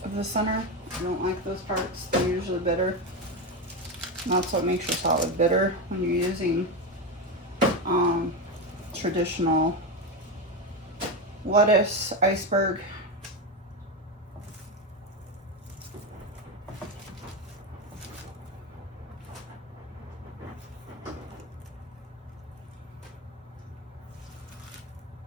of the center. I don't like those parts, they're usually bitter. And that's what makes your salad bitter when you're using traditional lettuce, iceberg.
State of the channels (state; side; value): normal; both; correlation 0.15